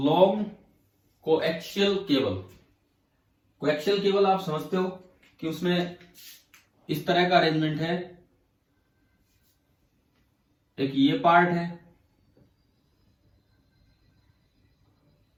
coaxial cable. Coaxial cable आप समझते हो कि उसमें इस तरह का अरेंजमेंट है, एक ये पार्ट है,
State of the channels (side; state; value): both; identical; correlation 1.00